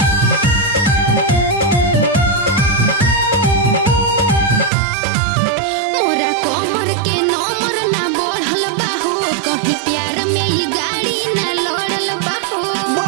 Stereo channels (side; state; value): left; drops out; at 4.7 s